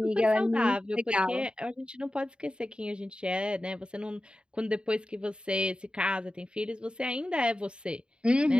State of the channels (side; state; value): left; late; 0.052 ms